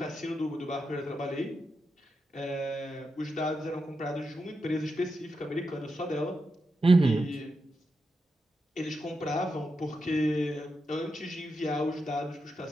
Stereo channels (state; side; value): normal; both; correlation 0.87